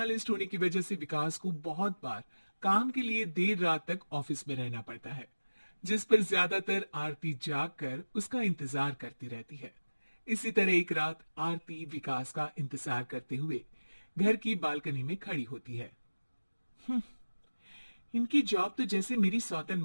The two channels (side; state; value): both; inverted; correlation -1.00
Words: होने की वजह से विकास को बहुत बार काम के लिए देर रात तक ऑफिस में रहना पड़ता है, जिस पर ज्यादातर आरती जाग कर उसका इंतजार करती रहती है। इसी तरह एक रात आरती विकास का इंतजार करते हुए घर की बालकनी में खड़ी होती है। इनकी जॉब तो जैसे मेरी सौतन